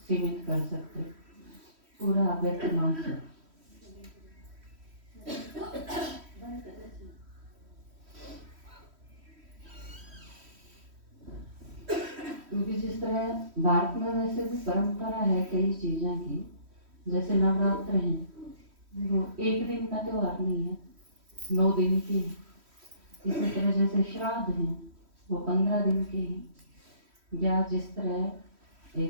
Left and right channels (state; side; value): late; left; 3.1 ms